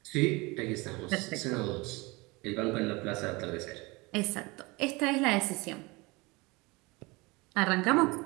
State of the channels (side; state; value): left; quieter; 24.7 dB